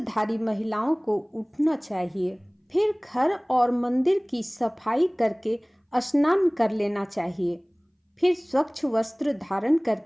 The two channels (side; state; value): both; identical; correlation 1.00